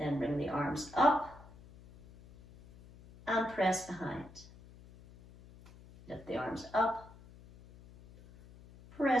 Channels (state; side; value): noise; left; hum, 21 dB below the sound